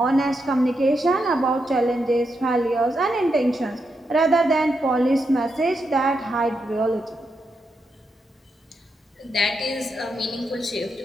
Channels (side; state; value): both; normal; correlation 0.84